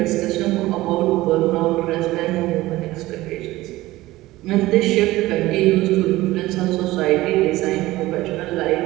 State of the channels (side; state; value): left; quieter; 17.8 dB